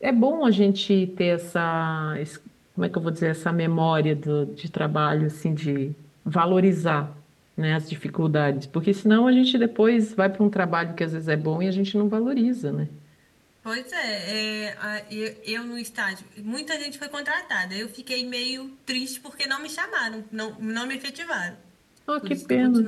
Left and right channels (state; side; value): identical; both; correlation 1.00